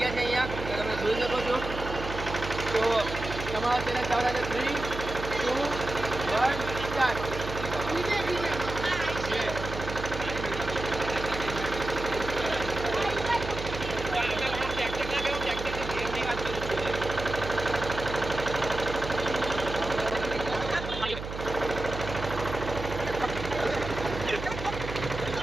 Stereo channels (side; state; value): right; noise; hum, 8 dB below the sound